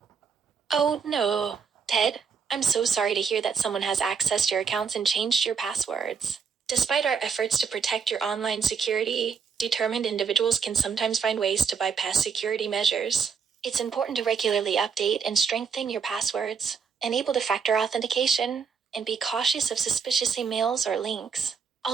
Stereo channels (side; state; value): left; quieter; 6.1 dB